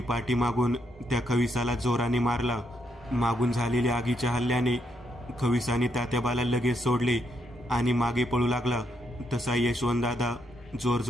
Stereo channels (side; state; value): both; normal; correlation 0.78